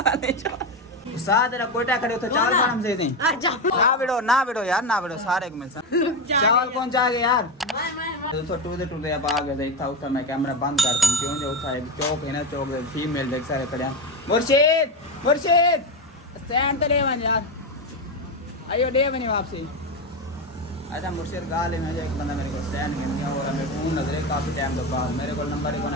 नहीं छोड़ साथ तेरा कोयटा खड़े उधर चावल खाना से नहीं ना बिड़ो यार ना बिड़ो सारे को मिल चावल कौन चाह गए यार तो टूटे अब आ गए था उधर मैं कैमरा बंद कर दूं क्यों जो था चौक है ना चौक फीमेल देख सारे खड़े मुर्शिद स्टैंड तो ले वन यार आइयो दे बनी वापसी अच्छा मुर्शिद गाल में एक बंदा मेरे को स्टैंड में दिया और मैं फोन नजरे काफ़ी टाइम के बाद मेरे को नंबर ही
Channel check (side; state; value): both; normal; correlation 0.15